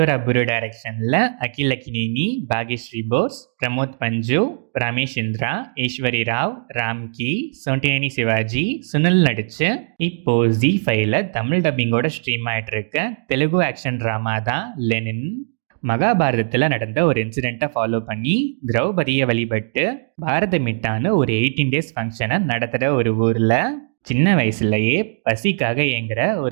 அப்புரு டைரக்ஷனில் அகில் அக்கினேனி, பாக்யஸ்ரீ போஸ், பிரமோத் பஞ்சு, ரமேஷ் இந்திரா, ஈஸ்வரி ராவ், ராம்கி, சோண்டினேனி சிவாஜி, சுனில் நடிச்சு இப்போ Z5ல தமிழ் டப்பிங்கோட ஸ்ட்ரீம் ஆயிட்டு இருக்க தெலுங்கு ஆக்ஷன் ட்ராமா தான் லெனின். மகாபாரதத்தில் நடந்த ஒரு இன்சிடெண்ட்டை ஃபாலோ பண்ணி திரௌபதியை வழிபட்டு பாரத மிட்டான்னு ஒரு 18 days ஃபங்க்ஷனை நடத்துகிற ஒரு ஊரில் சின்ன வயசுலயே பசிக்காக ஏங்குற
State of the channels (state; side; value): silent; left; digital silence